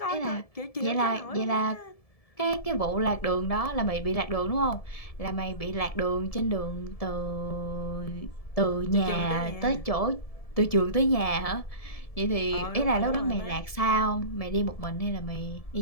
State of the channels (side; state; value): right; late; 1.7 ms